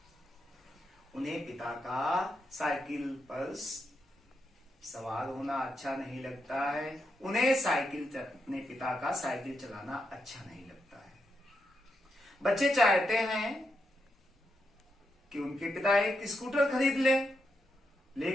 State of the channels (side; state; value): both; normal; correlation 0.83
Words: उन्हें पिता का साइकिल पर सवार होना अच्छा नहीं लगता है, उन्हें अपने पिता का साइकिल चलाना अच्छा नहीं लगता है। बच्चे चाहते हैं कि उनके पिता एक स्कूटर खरीद लें,